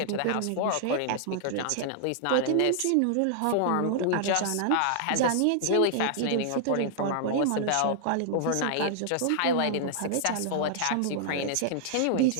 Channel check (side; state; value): both; different; correlation -0.01